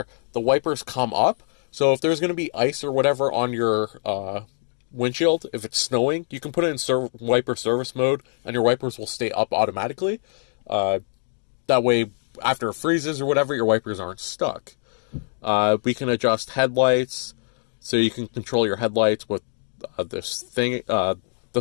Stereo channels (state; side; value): silent; right; digital silence